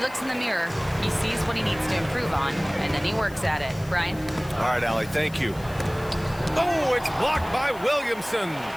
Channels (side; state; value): left; noise; hiss, 21 dB below the sound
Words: in the mirror, he sees what he needs to improve on, and then he works at it. Brian? All right, Allie, thank you. Oh, it's blocked by Williamson.